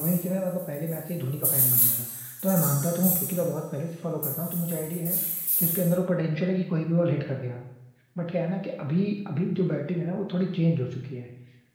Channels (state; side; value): identical; both; correlation 1.00